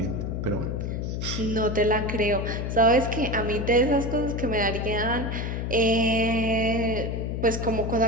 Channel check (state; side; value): noise; left; hum, 3 dB below the sound